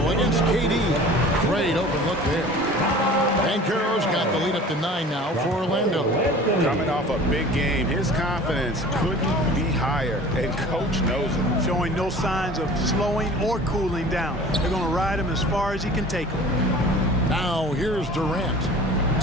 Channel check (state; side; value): normal; both; correlation 0.43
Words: against KD. Great open look there. Banchero's got the lead up to 9 now for Orlando. Coming off a big game, his confidence couldn't be higher, and coach knows it. Showing no signs of slowing or cooling down. They're going to ride him as far as he can take him. Now here's Durant.